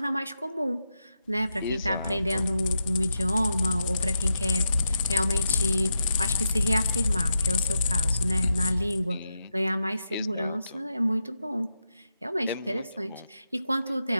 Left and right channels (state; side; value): inverted; both; correlation -0.85